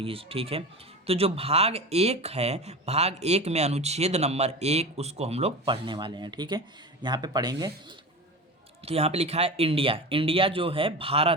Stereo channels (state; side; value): normal; both; correlation 0.28